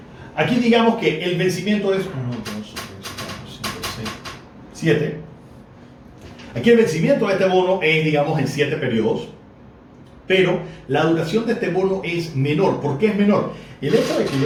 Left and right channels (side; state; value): both; identical; correlation 1.00